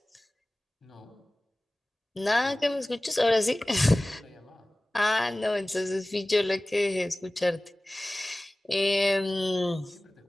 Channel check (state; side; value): normal; both; correlation 0.98